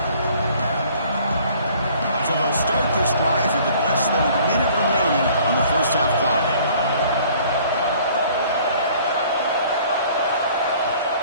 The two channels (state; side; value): inverted; both; correlation -0.55